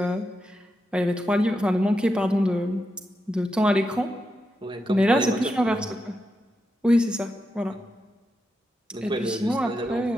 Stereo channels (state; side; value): normal; both; correlation 0.87